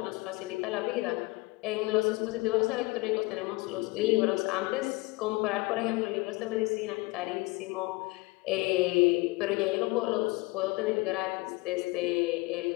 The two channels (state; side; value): quieter; right; 23.8 dB